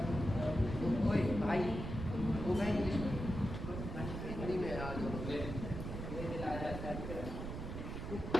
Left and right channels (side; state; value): right; noise; rumble, 6 dB below the sound